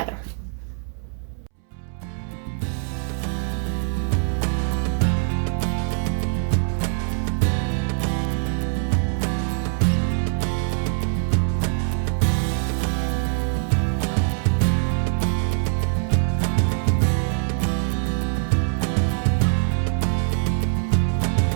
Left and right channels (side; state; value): left; silent; 63 dB below the other